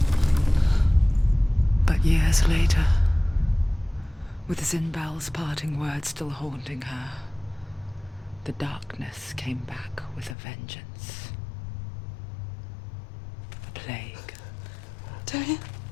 But years later, With Zinbal's parting words still haunting her, the darkness came back with a vengeance. A plague. Dillian?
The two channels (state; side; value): drops out; right; at 10.4 s